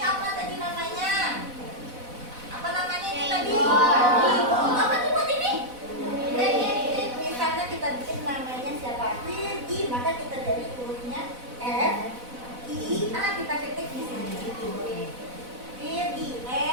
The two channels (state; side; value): late; left; 4.0 ms